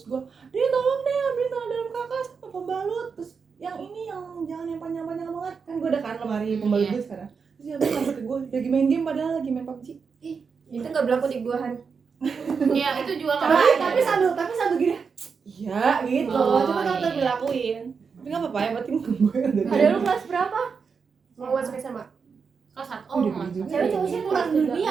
gue dia tolong deh ambilin celana dalam kakak sama pembalut, terus yang ini yang jangan yang panjang-panjang banget kan gue udah kan lemari pembalut Iya. gue sekarang. Terus dia bilang sampai ke gue lagi main game padahal lagi main PUBG. itu nggak berlaku di gua Han. Iya, itu juga nggak Tapi sambil gini. Iya gitu. Oh, Cuma kalau iya. dilakuin. Tapi nggak apa-apa ya, berarti gue yang dari Ada lu kelas berapa? Mau masuk SMA. kelas 1. Oh, Oh, udah mas. gitu. Cewek cowok sih kurang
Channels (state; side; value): quieter; left; 5.6 dB